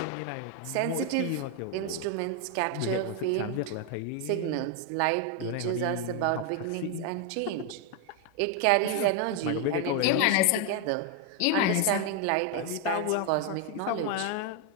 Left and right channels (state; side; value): different; both; correlation 0.01